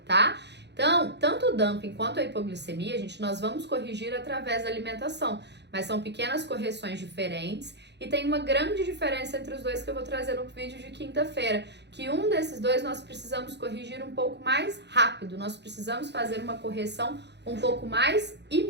tá? Então, tanto o dumping quanto a hipoglicemia, gente, nós vamos corrigir através da alimentação, mas são pequenas correções diferentes e tem uma grande diferença entre os dois que eu vou trazer no vídeo de quinta-feira, que um desses dois nós precisamos corrigir um pouco mais rápido, nós precisamos fazer uma correção um pouco mais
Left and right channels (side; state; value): left; late; 0.50 ms